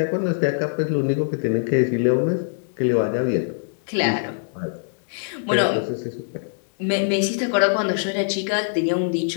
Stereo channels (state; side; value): silent; right; digital silence